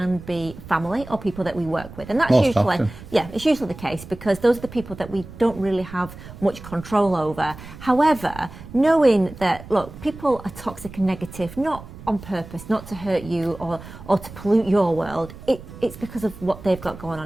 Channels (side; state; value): right; noise; rumble, 15 dB below the sound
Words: be family or people that we work with, and that's it's usually the case because those are the people that we don't really have much control over. However, knowing that, look, people are toxic and negative not on purpose, not to hurt you or to pollute your world, it's because of what they've got going